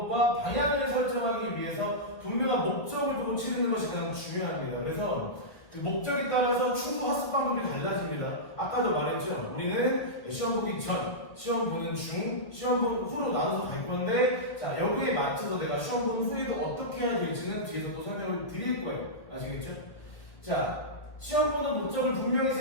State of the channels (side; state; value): right; late; 1.8 ms